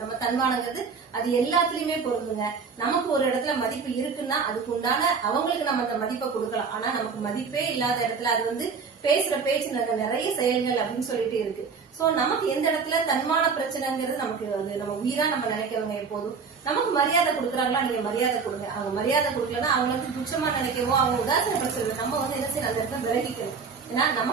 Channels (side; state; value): left; quieter; 5.4 dB